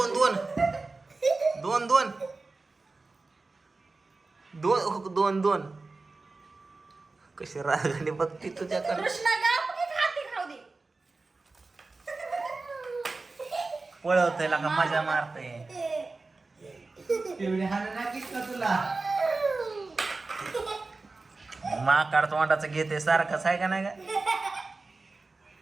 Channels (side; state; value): left; quieter; 3.7 dB